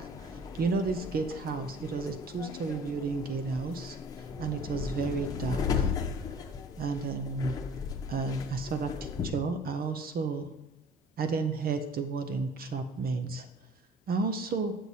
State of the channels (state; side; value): normal; both; correlation 0.49